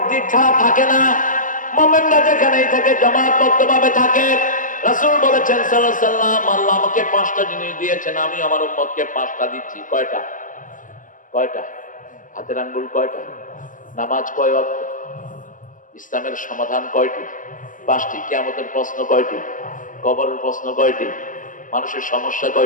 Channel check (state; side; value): late; right; 0.38 ms